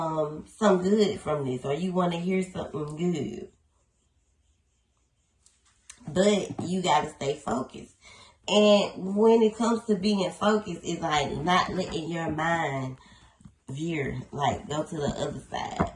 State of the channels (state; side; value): identical; both; correlation 1.00